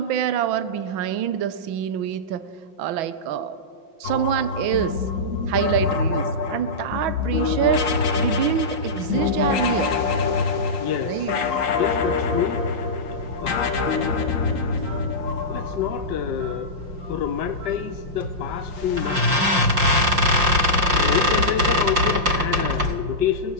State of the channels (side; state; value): left; late; 5.6 ms